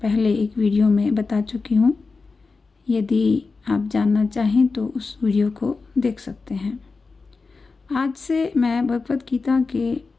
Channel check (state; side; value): quieter; right; 4.2 dB